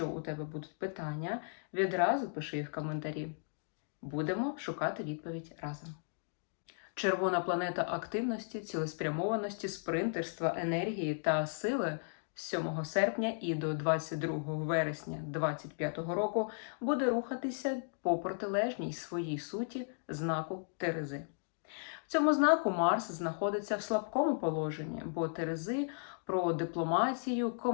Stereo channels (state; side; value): silent; right; digital silence